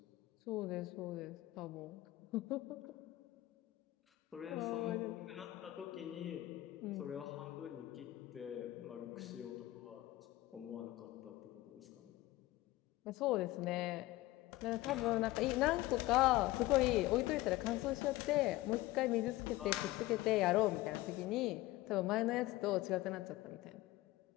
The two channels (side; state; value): right; quieter; 17.6 dB